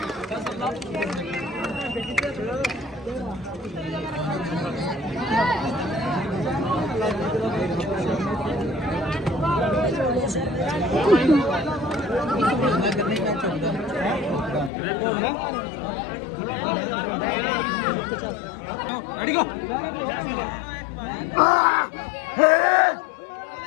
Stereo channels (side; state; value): right; drops out; at 14.7 s